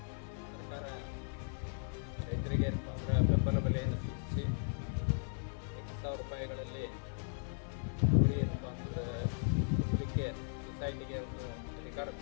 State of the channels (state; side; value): silent; right; 53 dB below the other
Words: ಸರ್ಕಾರ ರೈತರಿಗೆ ಏನಪ್ಪ ಅಂದರೆ ಬೆಂಬಲ ಬೆಲೆಯನ್ನು ಸೂಚಿಸಿ 8,000 ರೂಪಾಯಿಗಳಲ್ಲಿ ಕೂಲಿ ಏನಪ್ಪ ಅಂದರೆ ಕುಟುಂಬಕ್ಕೆ ಸೊಸೈಟಿಗೆ ಒಂದು ಅಧಿಕಾರ